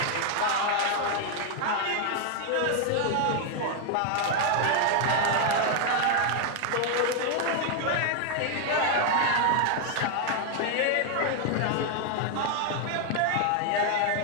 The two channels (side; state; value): both; different; correlation 0.00